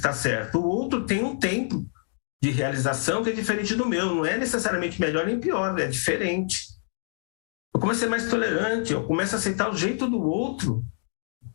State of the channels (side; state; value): right; silent; digital silence